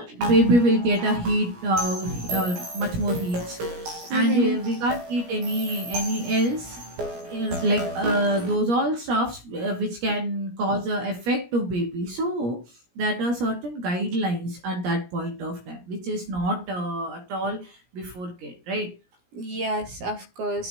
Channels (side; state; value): left; late; 17 ms